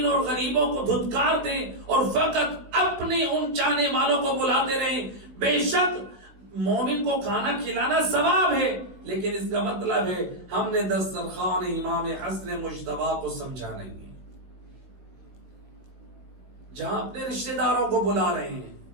اور غریبوں کو دھتکار دیں اور فقط اپنے ان چاہنے والوں کو بلاتے رہیں، بے شک مومن کو کھانا کھلانا ثواب ہے، لیکن اس کا مطلب ہے ہم نے دسترخوان امام حسن مجتبیٰ کو سمجھا نہیں. جہاں اپنے رشتہ داروں کو بلا رہے ہیں،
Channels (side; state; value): left; late; 16 ms